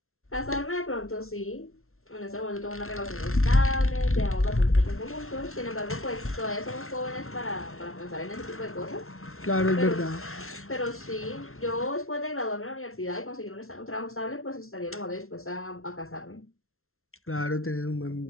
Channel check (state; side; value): late; right; 0.62 ms